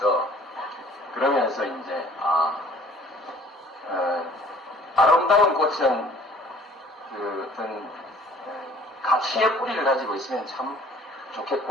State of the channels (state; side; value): normal; both; correlation 0.53